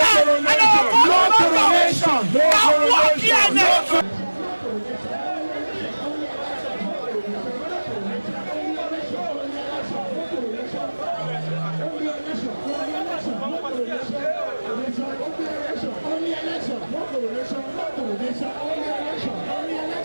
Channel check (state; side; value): inverted; both; correlation -1.00